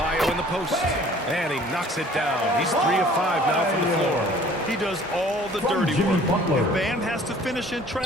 in the post. And he knocks it down. He's 3 of 5 now from the floor. He does all the dirty work. If Bam has to finish in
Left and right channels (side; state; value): both; normal; correlation 0.52